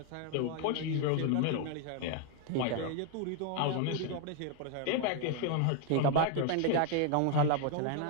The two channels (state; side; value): different; both; correlation 0.01